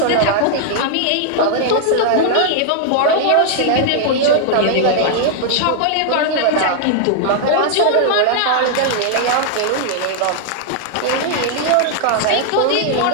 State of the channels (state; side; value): different; both; correlation -0.01